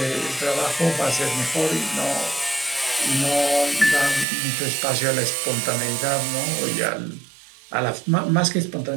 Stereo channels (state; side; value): drops out; left; at 4.2 s